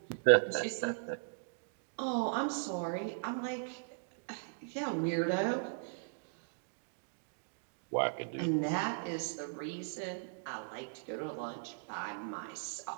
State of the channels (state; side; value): silent; left; digital silence